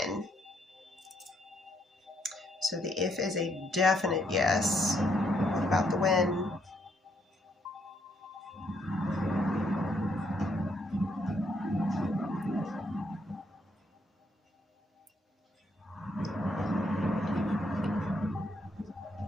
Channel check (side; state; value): both; normal; correlation 0.73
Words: So the if is a definite yes. What about the when?